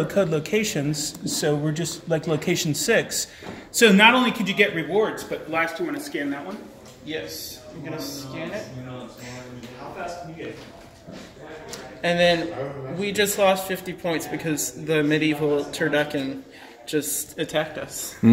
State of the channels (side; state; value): both; identical; correlation 1.00